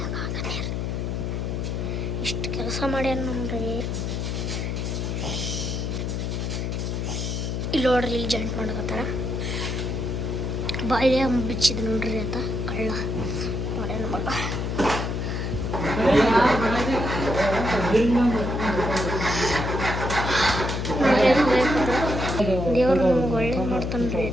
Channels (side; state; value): left; noise; hum, 2 dB below the sound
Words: ಇಷ್ಟು ಕೆಲಸ ಮಾಡ್ಯಾನ ನೋಡ್ರಿ. ಇಲ್ಲಿ ನೋಡ್ರಿ ಇಲ್ಲಿ ಜಾಯಿಂಟ್ ಮಾಡಕತ್ತಾರ. ಬಾಯಿಲೆ ಬಿಚ್ಚಿದ್ ನೋಡ್ರಿ ಆತ ಕಳ್ಳ ಮಾಡ್ಯಾನ ಮಗ. ದೇವ್ರು ನಮ್ಗೆ ಒಳ್ಳೆ ಮಾಡ್ತಾನ್ರಿ.